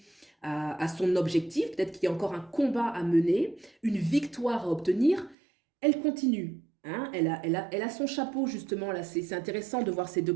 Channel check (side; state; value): left; drops out; at 5.4 s